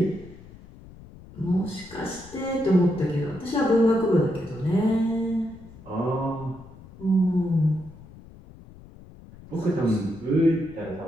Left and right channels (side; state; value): left; noise; rumble, 20 dB below the sound